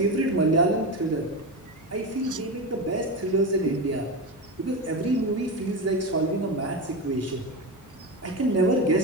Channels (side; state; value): both; normal; correlation 0.19